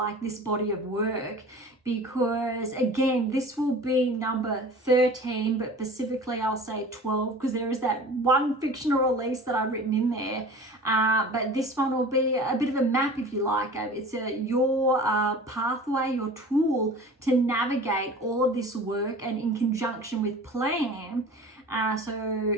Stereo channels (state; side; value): normal; both; correlation 0.40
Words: this body of work, because again, this will be number 13, but specifically I'll say 12, because there is that one fictional release that I've written in there, but this one will be a bit of a map, if you like. It's your pathway, your tool to navigate all of this work, and in conjunction with plan, so